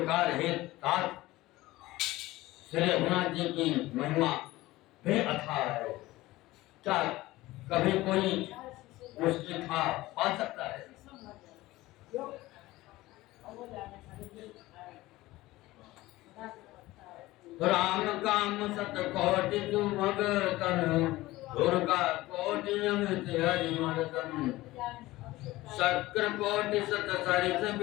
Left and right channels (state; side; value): quieter; right; 18.2 dB